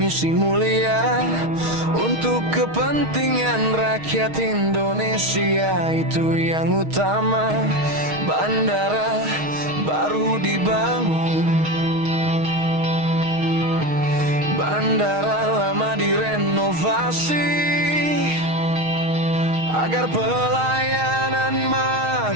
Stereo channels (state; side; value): late; left; 6.4 ms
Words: mulia untuk kepentingan rakyat Indonesia, itu yang utama. Bandara baru dibangun, bandara lama direnovasi agar pelayanan